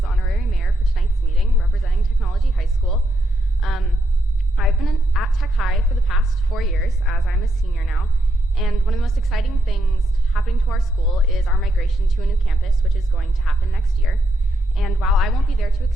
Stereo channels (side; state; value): both; normal; correlation 0.79